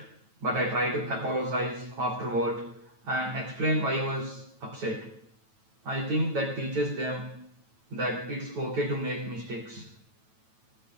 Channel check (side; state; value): left; late; 9.1 ms